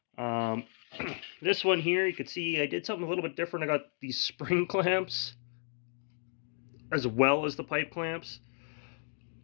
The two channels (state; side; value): silent; right; 55 dB below the other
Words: This one here, you can see I did something a little bit different. I got these spring clamps as well as the pipe clamps,